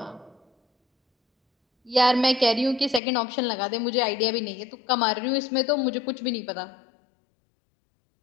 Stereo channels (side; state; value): right; drops out; at 3.0 s